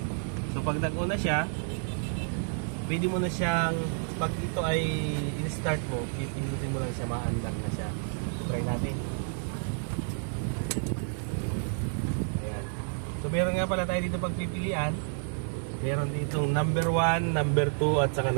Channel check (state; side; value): silent; left; 58 dB below the other